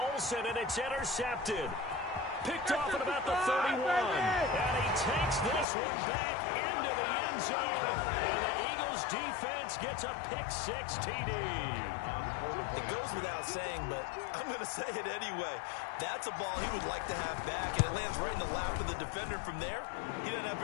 and it's intercepted. Picked off at about the 31. And he takes this one back into the end zone. And the Eagles defense gets a pick-6 TD. It goes without saying, but I'm going to say it anyway. That's a ball he would like to have back, and it lands right in the lap of the defender from there. He doesn't have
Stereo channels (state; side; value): drops out; right; at 5.7 s